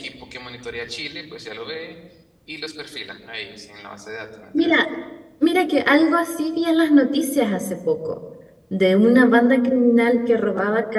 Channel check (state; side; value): identical; both; correlation 1.00